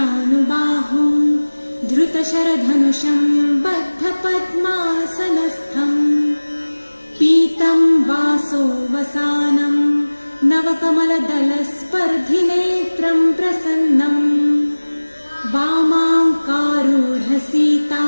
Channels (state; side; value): inverted; both; correlation -1.00